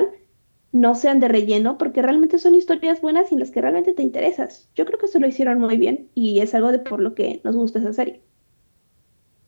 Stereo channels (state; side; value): inverted; both; correlation -1.00